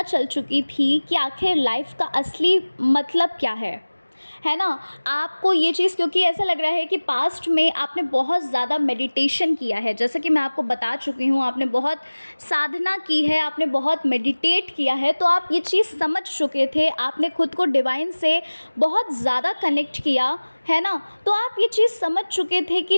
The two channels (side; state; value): both; inverted; correlation -1.00